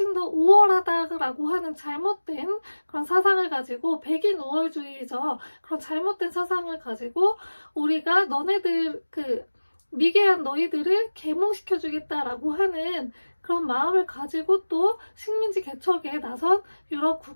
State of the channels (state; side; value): inverted; both; correlation -1.00